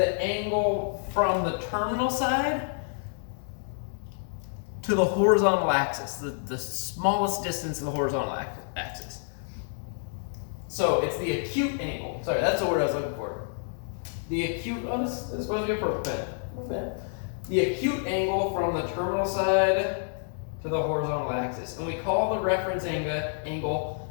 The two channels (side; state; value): right; silent; digital silence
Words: angle from the terminal side to the horizontal axis, the smallest distance to the horizontal axis. So it's the acute angle. Sorry, that's the word I was looking for. The acute, oh, this is supposed to be a purple pen. Okay. The acute angle from the terminal side to the horizontal axis. And we call the reference angle